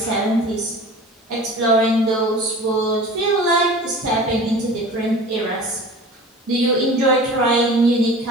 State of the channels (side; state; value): both; normal; correlation 0.39